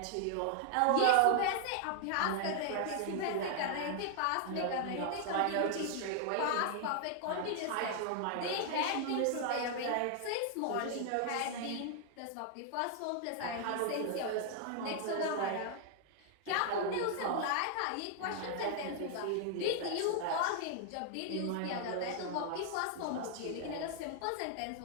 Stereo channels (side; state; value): both; different; correlation 0.00